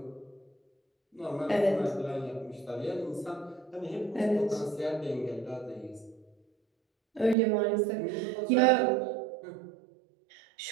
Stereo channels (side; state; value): left; drops out; at 7.4 s